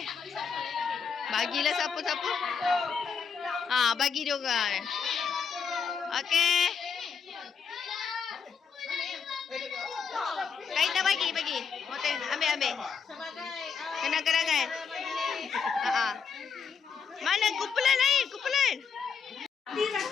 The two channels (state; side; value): quieter; right; 6.3 dB